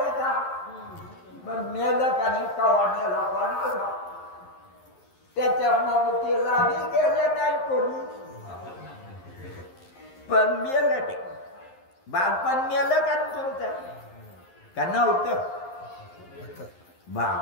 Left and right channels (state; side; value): late; right; 11 ms